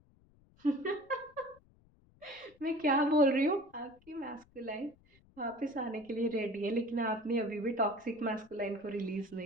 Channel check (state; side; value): noise; left; rumble, 29 dB below the sound